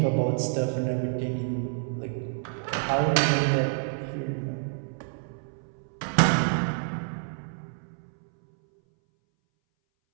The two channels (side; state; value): left; silent; 59 dB below the other